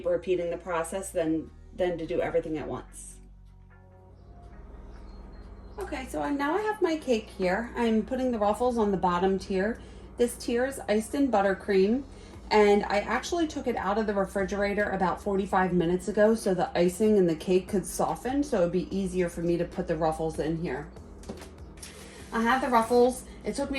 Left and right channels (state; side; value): identical; both; correlation 1.00